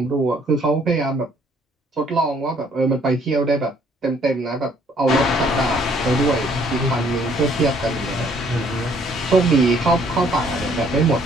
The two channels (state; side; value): normal; both; correlation 0.63